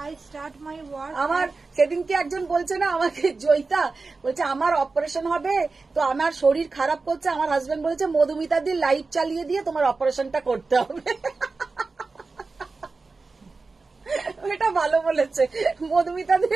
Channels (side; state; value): left; quieter; 4.0 dB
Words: আই স্টার্ট মাই ওয়ার্ক। আমার সেদিনকে একজন বলছে না আমাকে, জয়িতা বলছে আমার অপারেশন হবে, তো আমার শরীর খারাপ করছে, আমার হাজবেন্ড বলেছে মধুমিতা দি লাইভ চালিয়ে দিয়ে তোমার অপারেশনটা করতে হবে। এটা ভালো বলেছে। মধুমিতাদের